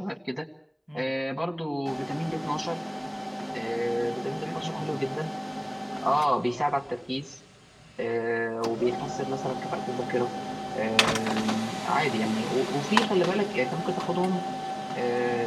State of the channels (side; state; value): both; identical; correlation 1.00